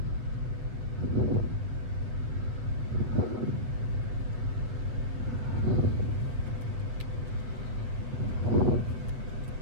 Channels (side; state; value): left; late; 8.0 ms